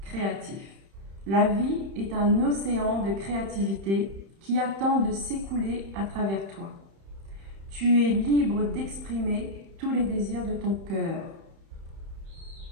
créatif. La vie est un océan de créativité qui attend de s'écouler à travers toi. Tu es libre d'exprimer tous les désirs de ton cœur.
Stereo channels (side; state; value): left; late; 31 ms